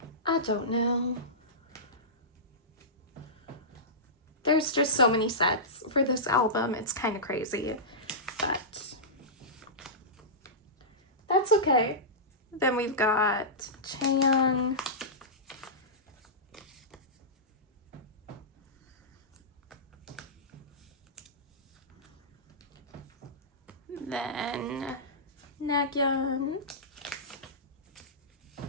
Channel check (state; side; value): normal; both; correlation -0.16